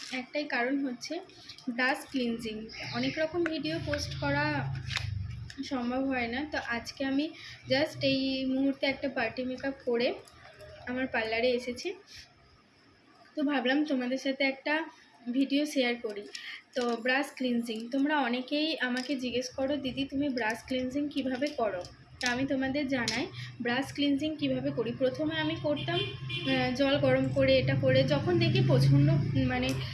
একটাই কারণ হচ্ছে ব্রাশ ক্লিনজিং। অনেক রকম ভিডিও পোস্ট করা সম্ভব হয় না, তো আজকে আমি জাস্ট এই মুহূর্তে একটা পার্টি মেকআপ করে আমার পার্লারে এসেছি, তো ভাবলাম তোমাদের সাথে একটা ভিডিও শেয়ার করি। তো ব্রাশ ক্লিনজিং, তোমরা অনেকেই আমাকে জিজ্ঞেস করো, দিদি তুমি ব্রাশ ক্লিনজিং কিভাবে করো? তা আমি তোমাদের জানাই ব্রাশ ক্লিনজিং কিভাবে করি। প্রথমে আমি করতাম জল গরম করে, এটা করে যখন দেখি প্রচণ্ড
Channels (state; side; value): identical; both; correlation 1.00